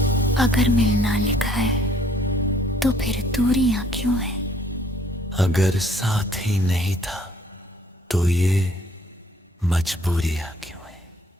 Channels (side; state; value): both; normal; correlation 0.61